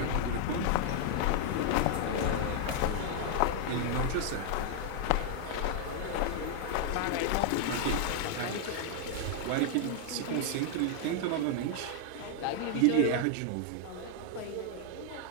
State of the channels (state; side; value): different; both; correlation 0.00